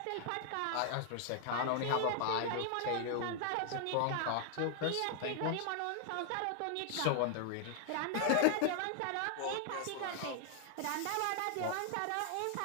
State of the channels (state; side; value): different; both; correlation 0.00